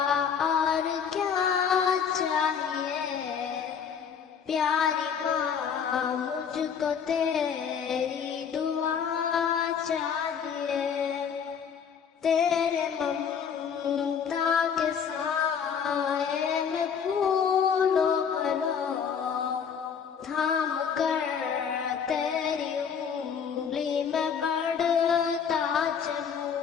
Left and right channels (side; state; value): right; quieter; 7.2 dB